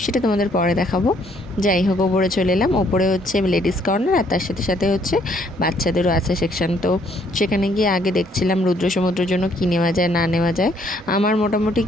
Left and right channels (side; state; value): both; normal; correlation 0.66